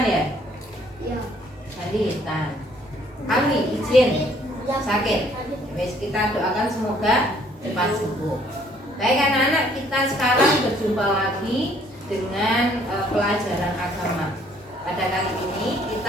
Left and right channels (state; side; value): normal; both; correlation 0.62